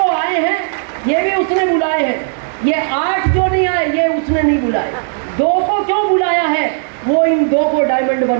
आए हैं ये भी उसने बुलाए हैं, ये 8 जो नहीं आए ये उसने नहीं बुलाए। 2 को क्यों बुलाया है? वो इन 2 को डायमंड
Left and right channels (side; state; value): left; silent; 70 dB below the other